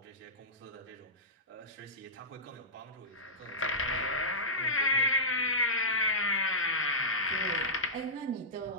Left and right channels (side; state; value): both; normal; correlation -0.14